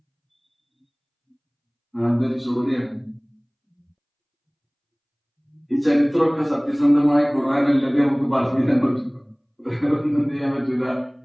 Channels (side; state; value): both; identical; correlation 1.00